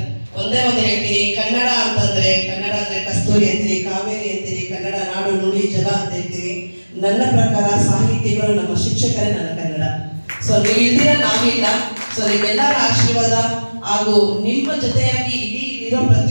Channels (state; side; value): inverted; both; correlation -1.00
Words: ಒಂದೇ ಒಂದು ಹೇಳ್ತೀನಿ, ಕನ್ನಡ ಅಂತಂದ್ರೆ ಕನ್ನಡ ಅಂದ್ರೆ ಕಸ್ತೂರಿ ಅಂತೀರಿ, ಕಾವೇರಿ ಅಂತೀರಿ, ಕನ್ನಡ ನಾಡು ನುಡಿ ಜಲ ಅಂತ ಹೇಳ್ತೀರಿ. ನನ್ನ ಪ್ರಕಾರ ಸಾಹಿತಿಗಳು ನಮ್ಮ ಶಿಕ್ಷಕರೇ ನನ್ನ ಕನ್ನಡ. ಸೊ ನೀವು ಇಲ್ದಿರ ನಾವಿಲ್ಲ. ಸೊ ನಿಮ್ಮೆಲ್ಲರ ಆಶೀರ್ವಾದ ಹಾಗೂ ನಿಮ್ಮ ಜೊತೆಯಾಗಿ ಇಲ್ಲಿರೋ